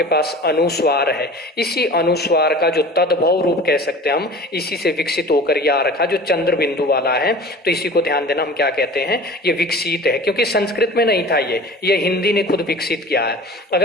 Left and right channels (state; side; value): normal; both; correlation 0.40